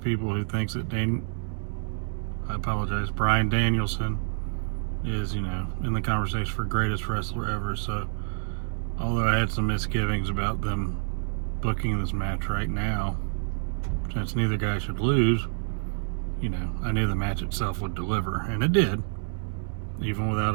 who thinks that Bryan Danielson is, in the conversation for greatest wrestler ever. So, although I had some misgivings about them booking this match right now, since neither guy should lose, I knew the match itself would deliver, and it did, even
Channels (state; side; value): silent; left; digital silence